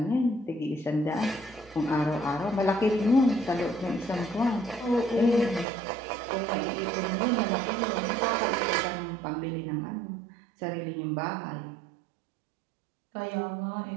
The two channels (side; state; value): left; drops out; at 5.7 s